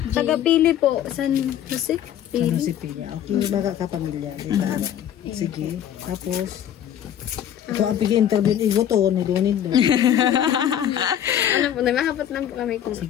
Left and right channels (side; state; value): right; quieter; 10.3 dB